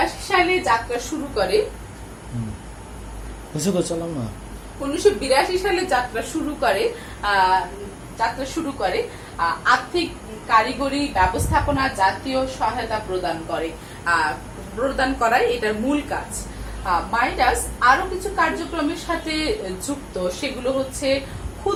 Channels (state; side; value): identical; both; correlation 1.00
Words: সালে যাত্রা শুরু করে। 1982 সালে যাত্রা শুরু করে আর্থিক, কারিগরি, ব্যবস্থাপনা জাতীয় সহায়তা প্রদান করাই এটার মূল কাজ। মাইডাস আরো কিছু কার্যক্রমের সাথে যুক্ত, সেগুলো হচ্ছে